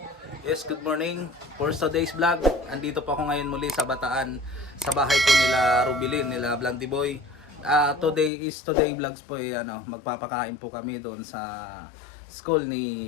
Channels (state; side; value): drops out; right; at 8.3 s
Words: Yes, good morning. For today's vlog, andito po ako ngayon muli sa Bataan, sa bahay po nila Rubilin, nila Blandy Boy. Today vlogs po magpapakain po kami doon sa school